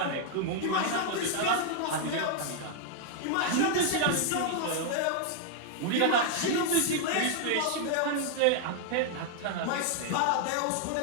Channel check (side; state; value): both; different; correlation 0.00